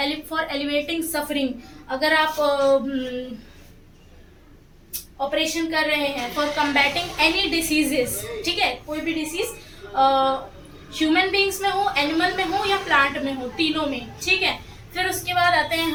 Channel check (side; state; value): both; identical; correlation 1.00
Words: for elevating suffering, अगर आप ऑपरेशन कर रहे हैं फॉर कम्बैटिंग एनी डिसीजेस, ठीक है, कोई भी डिसीज ह्यूमन बींग्स में हो, एनिमल में हो या प्लांट में हो, तीनों में, ठीक है। फिर उसके बाद आते हैं